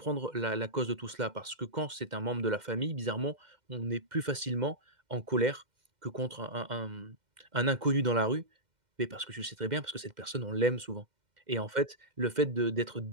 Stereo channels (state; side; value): late; left; 2.1 ms